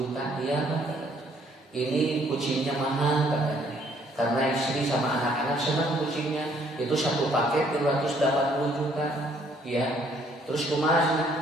dia ini kucingnya mahal katanya karena istri sama anak-anak senang kucingnya itu 1 paket 380 juta ya terus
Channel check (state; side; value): normal; both; correlation 0.64